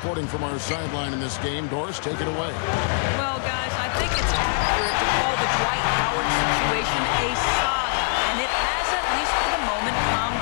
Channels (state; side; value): silent; right; digital silence